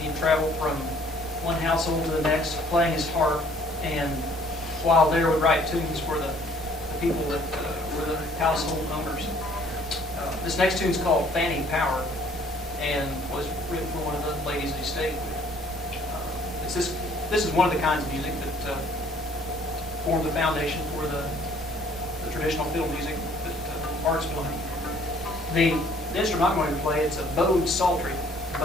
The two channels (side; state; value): both; normal; correlation 0.59